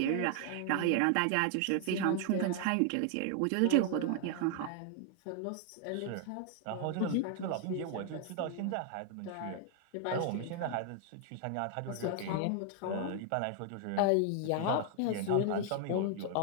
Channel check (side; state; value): both; different; correlation 0.00